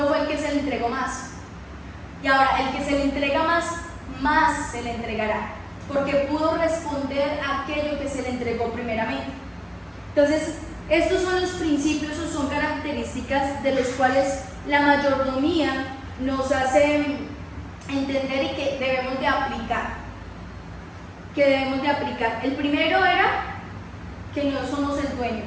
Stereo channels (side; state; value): both; identical; correlation 1.00